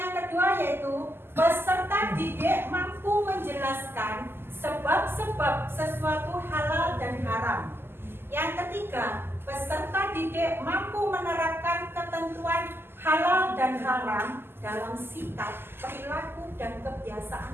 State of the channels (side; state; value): left; late; 0.11 ms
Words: kedua yaitu peserta didik mampu menjelaskan sebab-sebab sesuatu halal dan haram. Yang ketiga, peserta didik mampu menerapkan ketentuan halal dan haram dalam sikap, perilaku, dan